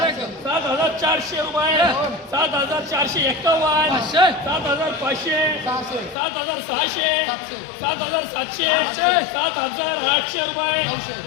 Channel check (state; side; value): drops out; right; at 6.2 s